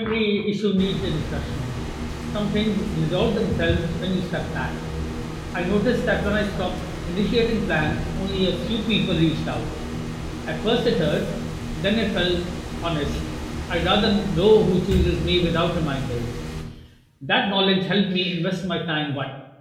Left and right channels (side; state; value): both; identical; correlation 1.00